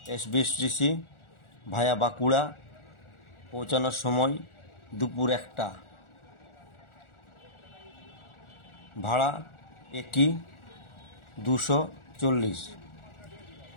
SBSTC ভায়া বাঁকুড়া, পৌঁছানোর সময় দুপুর 1টা। ভাড়া একই, 240।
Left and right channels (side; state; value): right; late; 1.4 ms